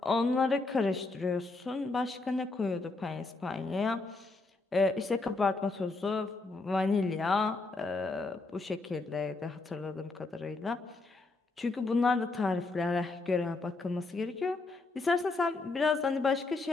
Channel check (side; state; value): right; quieter; 3.5 dB